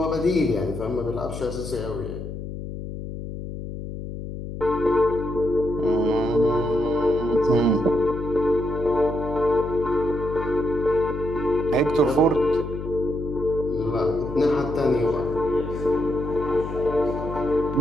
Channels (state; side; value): noise; left; hum, 8 dB below the sound